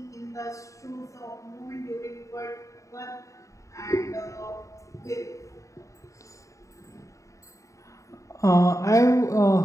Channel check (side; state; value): right; late; 0.15 ms